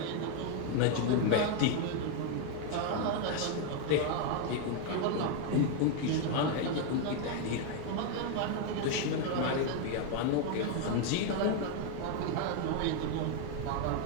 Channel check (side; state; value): both; different; correlation 0.01